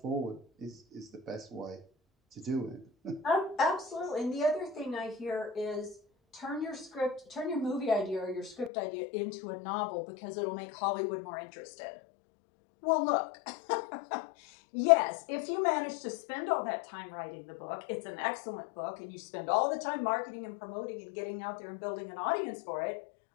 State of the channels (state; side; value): drops out; right; at 8.7 s